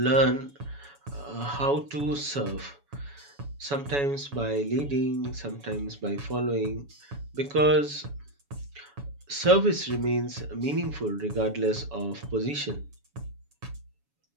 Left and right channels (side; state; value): left; late; 7.1 ms